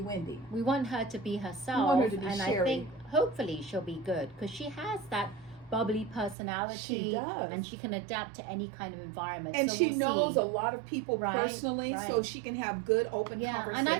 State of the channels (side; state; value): left; drops out; at 6.4 s